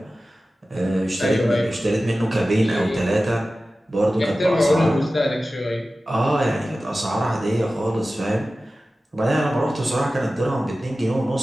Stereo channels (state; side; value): normal; both; correlation 0.95